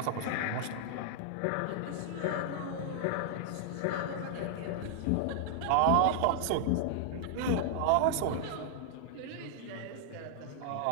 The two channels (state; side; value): different; both; correlation -0.01